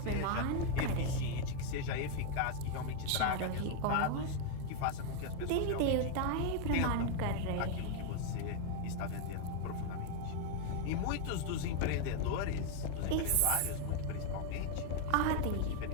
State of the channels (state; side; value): different; both; correlation 0.00